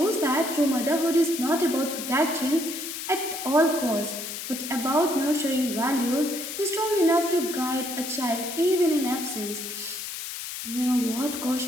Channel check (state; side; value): noise; left; hiss, 7 dB below the sound